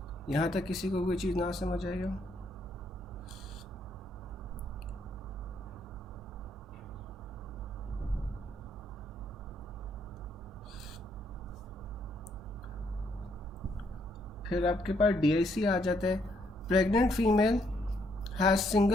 यहाँ तक किसी को कोई चीज़ ना समझ आई हो? फिर आपके पास DIC आ जाता है। Pregnant female has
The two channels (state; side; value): normal; both; correlation 0.72